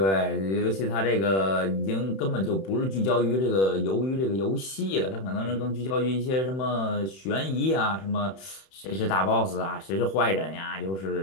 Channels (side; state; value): right; late; 31 ms